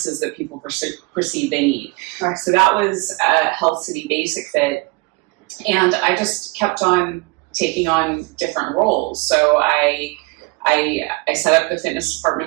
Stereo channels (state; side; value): quieter; left; 26.8 dB